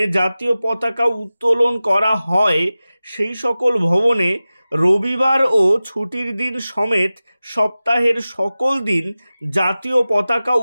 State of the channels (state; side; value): inverted; both; correlation -0.96